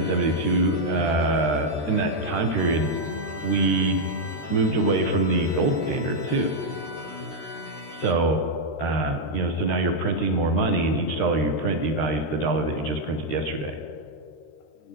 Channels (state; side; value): late; right; 13 ms